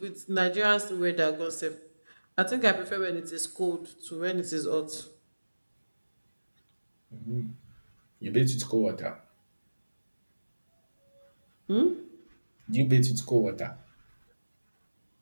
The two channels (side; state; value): both; inverted; correlation -1.00